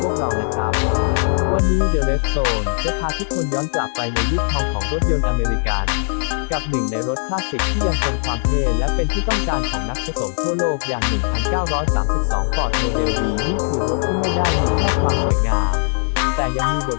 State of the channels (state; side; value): silent; right; digital silence